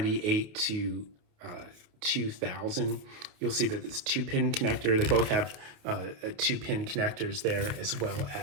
to 2000. You'll see that it's 2-pin connector. They both have 2-pin connectors there, as well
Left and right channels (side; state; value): left; late; 28 ms